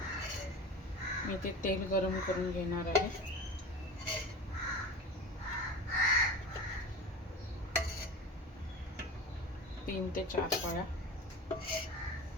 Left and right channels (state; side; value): normal; both; correlation 0.33